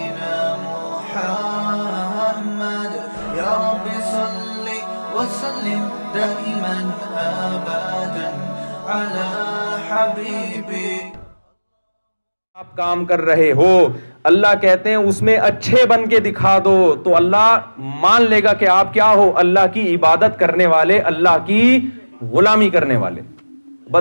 محمد يا رب صل وسلم دائما ابدا على حبيبي. آپ کام کر رہے ہو، اللہ کہتے ہیں اس میں اچھے بن کے دکھا دو تو اللہ مان لے گا کہ آپ کیا ہو، اللہ کی عبادت کرنے والے، اللہ کی غلامی کرنے والے.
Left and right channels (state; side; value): inverted; both; correlation -1.00